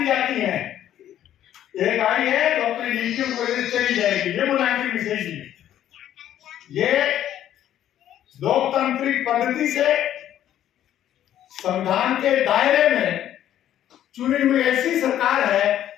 जाती हैं, एक आई है तो अपनी नीतियों को चली जाएगी, ये मुलायम की विशेष है। ये लोकतांत्रिक पद्धति से संविधान के दायरे में चुनी हुई ऐसी सरकार है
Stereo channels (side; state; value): right; quieter; 11.5 dB